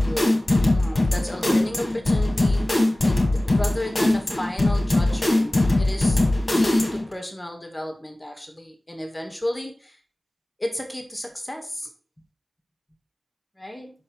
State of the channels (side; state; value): both; normal; correlation 0.98